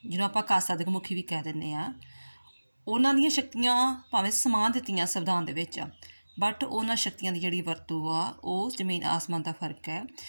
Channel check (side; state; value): both; inverted; correlation -1.00